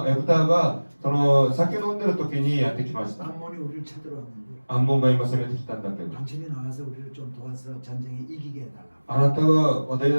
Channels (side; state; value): both; inverted; correlation -1.00